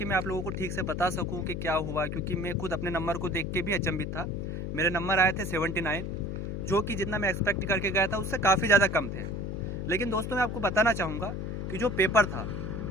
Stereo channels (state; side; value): noise; left; hum, 4 dB below the sound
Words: मैं आप लोगों को ठीक से बता सकूं कि क्या हुआ, क्योंकि मैं खुद अपने नंबर को देख के भी अचंभित था। मेरे नंबर आए थे 79, जो कि जितना मैं एक्सपेक्ट करके गया था उससे काफ़ी ज़्यादा कम थे। लेकिन दोस्तों, मैं आपको बताना चाहूँगा कि जो पेपर था